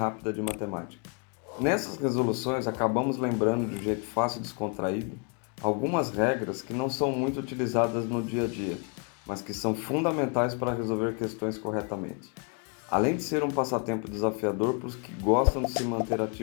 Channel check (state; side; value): quieter; right; 36.9 dB